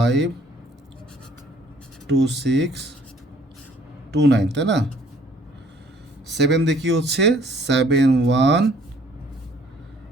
2 6 2 9, তাই না। 7 দিয়ে কী হচ্ছে, 7 1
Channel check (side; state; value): both; normal; correlation 0.59